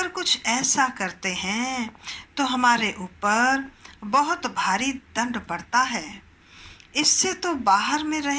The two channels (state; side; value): identical; both; correlation 1.00